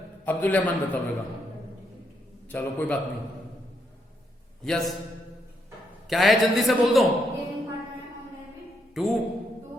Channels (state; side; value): normal; both; correlation 0.77